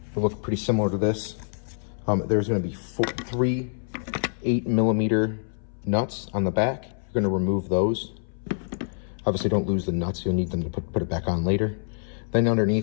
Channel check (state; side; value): silent; right; 61 dB below the other